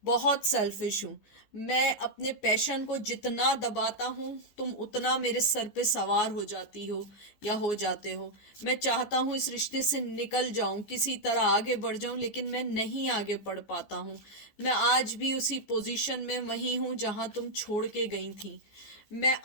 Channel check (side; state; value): right; late; 14 ms